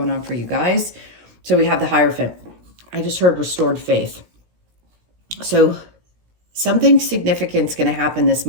on for you guys. So we have the Hierophant. I just heard restored faith. So something significant is going to happen this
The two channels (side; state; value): left; late; 17 ms